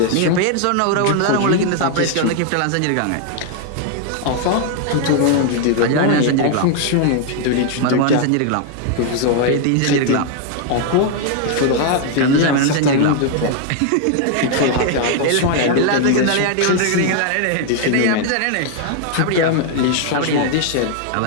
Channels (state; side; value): different; both; correlation 0.00